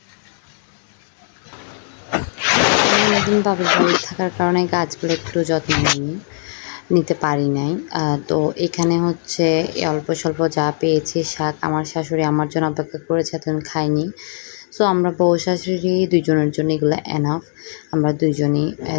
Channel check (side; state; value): right; silent; digital silence